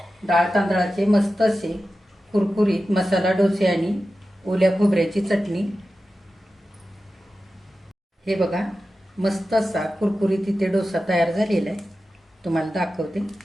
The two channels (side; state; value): both; normal; correlation 0.93